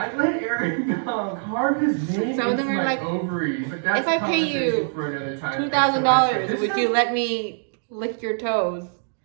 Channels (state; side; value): silent; left; digital silence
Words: let Eric carve his name Some of them into are my like, ovaries. But that's if I pay you conversation for another time. $2,000, would you let me lick your toes?